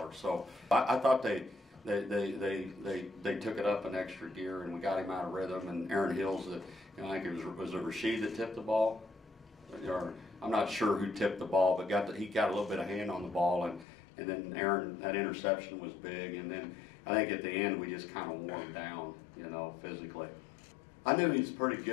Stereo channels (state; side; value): drops out; right; at 13.9 s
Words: So I thought they took it up an extra gear, and we got him out of rhythm. And Aaron Hills, I think it was Rashid that tipped the ball. Or, I'm not sure who tipped the ball, but he got a little bit of hand on the ball, and then Aaron, that interception was big. And then I think at the end we just kind of wore him down, you know, physically. I knew he was pretty